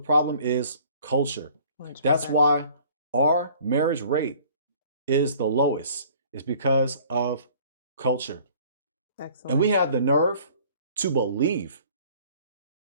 is culture. 100%. That's why our marriage rate is the lowest. It's because of culture. Excellent. And we have the nerve to believe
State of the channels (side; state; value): both; inverted; correlation -0.53